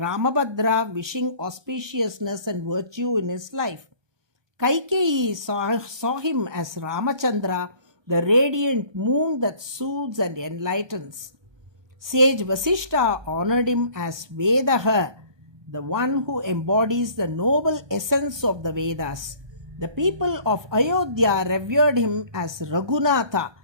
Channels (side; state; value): left; late; 1.2 ms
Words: wishing auspiciousness and virtue in his life. Kaikeyi saw him as Ramachandra, the radiant moon that soothes and enlightens. Sage Vasishta honored him as Vedaha, the one who embodies the noble essence of the Vedas. The people of Ayodhya revered him as Raghunatha,